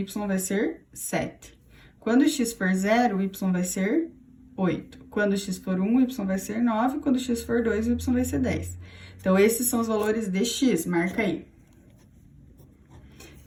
vai ser 7. Quando x for 0, o y vai ser 8. Quando x for 1, o y vai ser 9. Quando x for 2, o y vai ser 10. Então, esses são os valores de x, marca aí.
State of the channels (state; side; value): identical; both; correlation 1.00